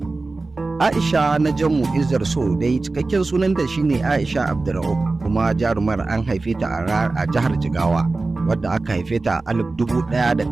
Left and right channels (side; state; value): left; quieter; 3.5 dB